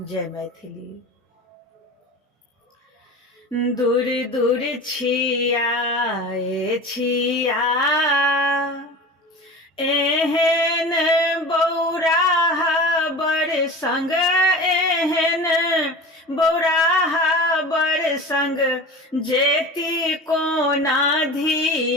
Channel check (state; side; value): normal; both; correlation 0.34